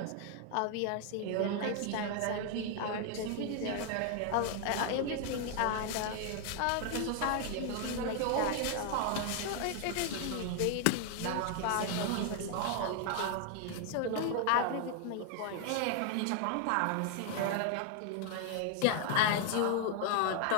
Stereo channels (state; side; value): different; both; correlation 0.00